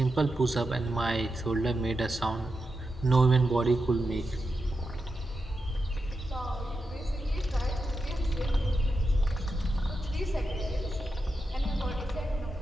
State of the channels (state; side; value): normal; both; correlation 0.88